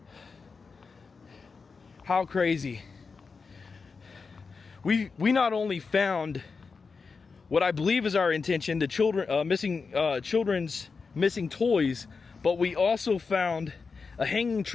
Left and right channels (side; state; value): right; quieter; 4.8 dB